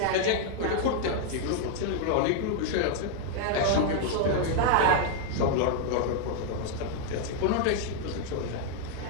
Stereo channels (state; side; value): different; both; correlation 0.00